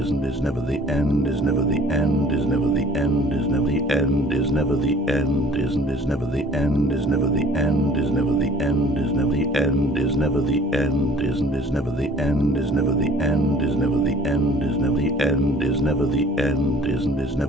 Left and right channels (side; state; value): both; normal; correlation 0.51